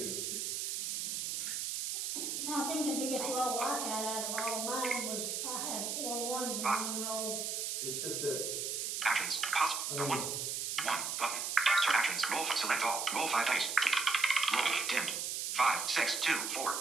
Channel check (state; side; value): noise; right; hiss, 2 dB below the sound